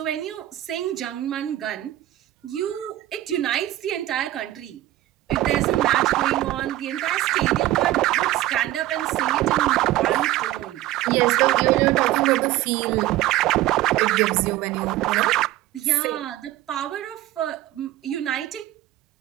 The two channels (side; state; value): left; quieter; 15.4 dB